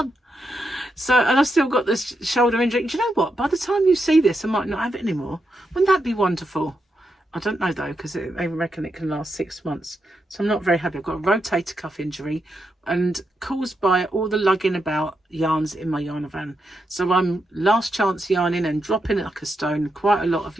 And I've still got this shoulder injury. Do you know what? By the time you see this, I might not have it anymore. Wouldn't that be wonderful? I don't know though, because they reckon it can last 6 months. So I'm not very happy. I've got a rotator cuff injury and caused by all the lugging about yarns in my yarn van. So I'm last chance yarning and dropping it like a stone, quite a lot of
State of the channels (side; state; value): both; normal; correlation 0.84